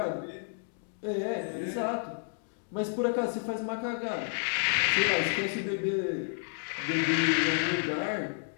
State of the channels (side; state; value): right; silent; 57 dB below the other